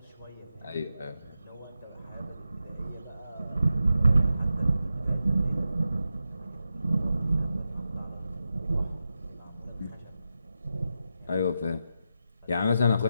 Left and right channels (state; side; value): inverted; both; correlation -0.89